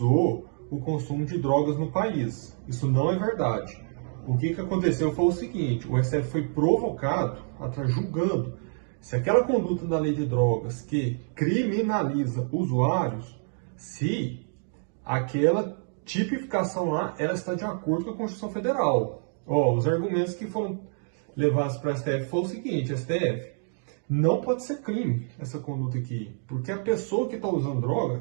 o consumo de drogas no país. Isso não é verdade. O que aconteceu foi o seguinte: o STF foi provocado, julgando se aquela conduta da lei de drogas que criminaliza usuários, se aquela tipificação lá ela está de acordo com a Constituição Federal. Os argumentos que foram levados para a STF foi o seguinte: STF, não pode ser crime essa conduta aqui, porque a pessoa que está usando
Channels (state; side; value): silent; left; 60 dB below the other